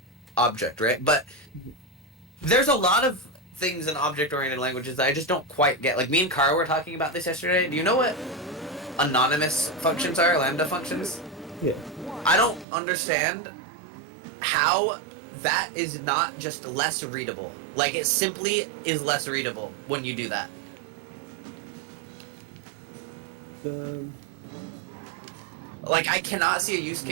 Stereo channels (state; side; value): drops out; left; at 12.7 s